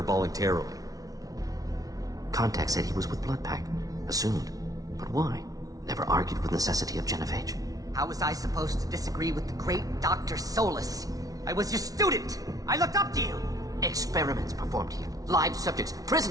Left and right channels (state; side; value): late; left; 0.18 ms